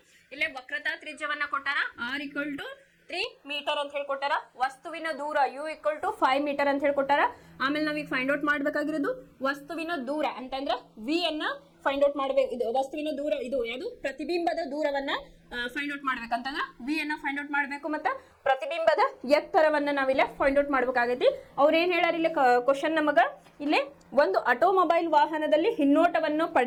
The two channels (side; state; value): both; identical; correlation 1.00